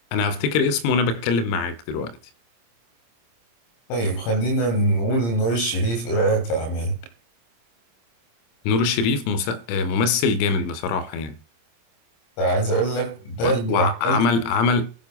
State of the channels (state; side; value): late; right; 26 ms